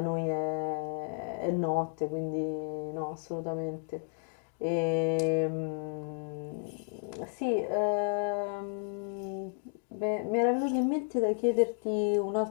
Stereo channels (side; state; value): right; silent; digital silence